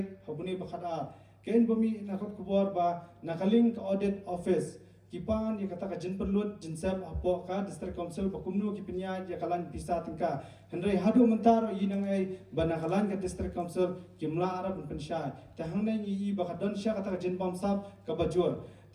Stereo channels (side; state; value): both; identical; correlation 1.00